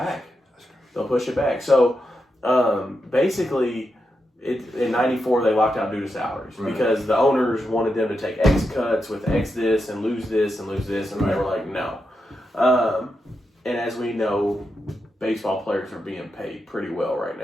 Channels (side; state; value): both; normal; correlation 0.86